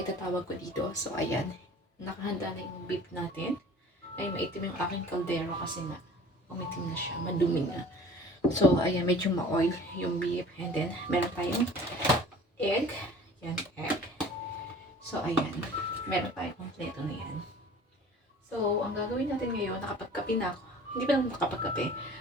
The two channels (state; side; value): normal; both; correlation 0.46